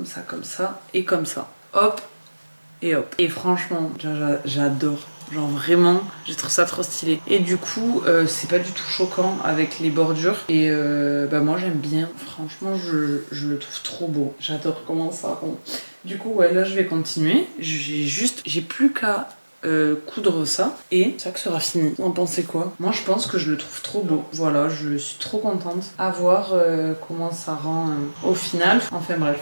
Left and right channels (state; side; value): inverted; both; correlation -1.00